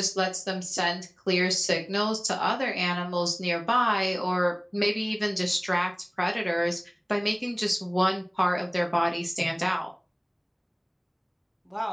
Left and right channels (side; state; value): both; identical; correlation 1.00